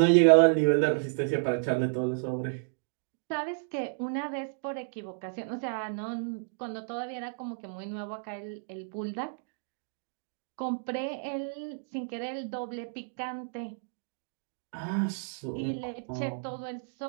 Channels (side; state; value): left; silent; digital silence